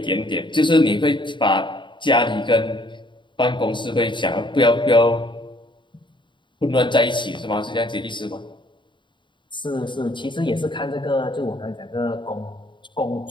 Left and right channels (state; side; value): late; right; 0.23 ms